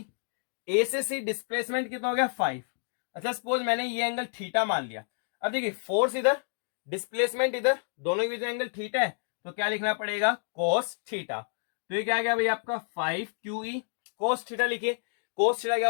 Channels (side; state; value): right; silent; digital silence